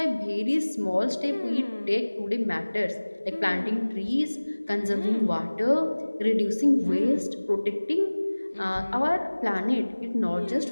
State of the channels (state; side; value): inverted; both; correlation -1.00